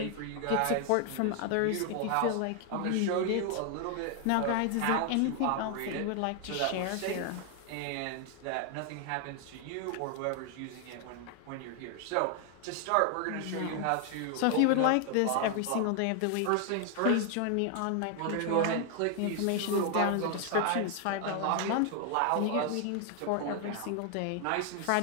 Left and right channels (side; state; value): both; different; correlation 0.00